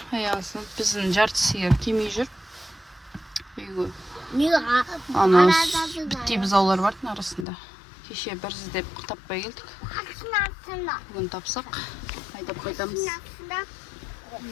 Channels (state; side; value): drops out; right; at 7.5 s